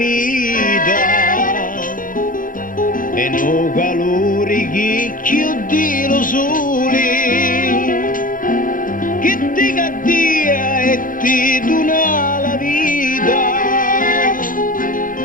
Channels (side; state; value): right; late; 0.40 ms